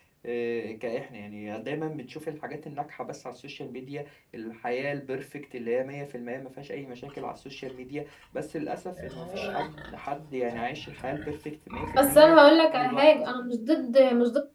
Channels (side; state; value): both; identical; correlation 1.00